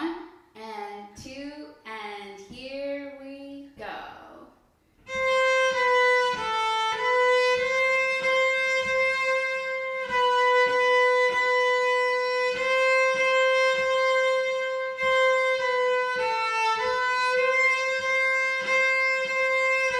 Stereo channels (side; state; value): both; identical; correlation 1.00